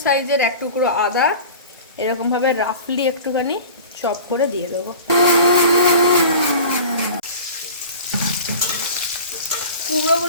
সাইজের এক টুকরো আদা এরকমভাবে রাফলি একটুখানি চপ করে দিয়ে দেবো।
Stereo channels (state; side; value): inverted; both; correlation -0.38